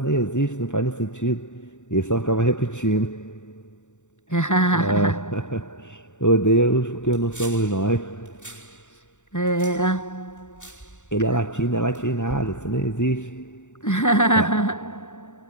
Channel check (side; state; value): right; late; 0.84 ms